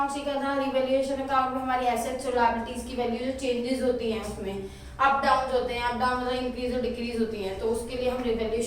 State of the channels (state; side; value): identical; both; correlation 1.00